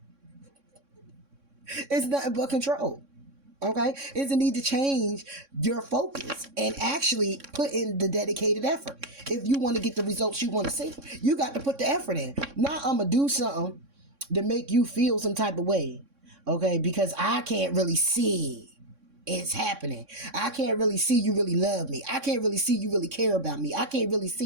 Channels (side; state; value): left; late; 3.6 ms